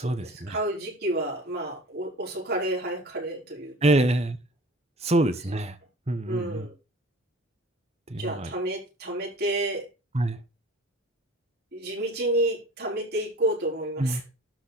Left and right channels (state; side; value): normal; both; correlation 0.43